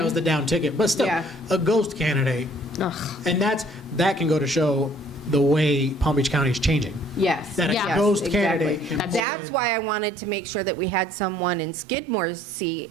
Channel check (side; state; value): left; drops out; at 9.2 s